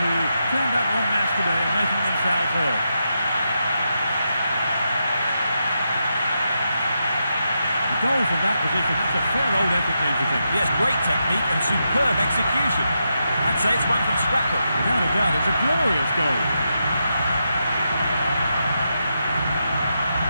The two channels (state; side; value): inverted; both; correlation -0.85